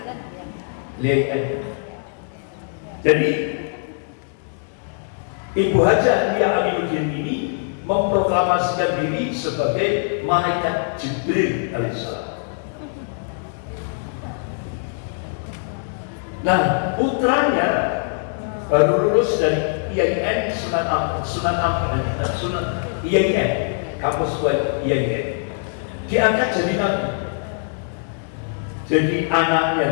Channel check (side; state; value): right; silent; digital silence